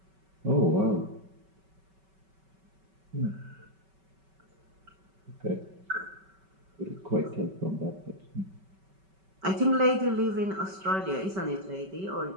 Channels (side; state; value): left; late; 5.2 ms